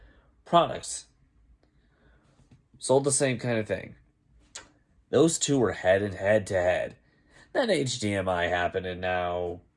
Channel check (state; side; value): identical; both; correlation 1.00